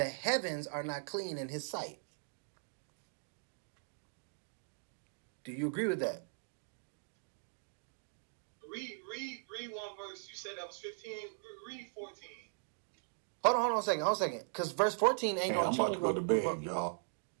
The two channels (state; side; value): silent; left; digital silence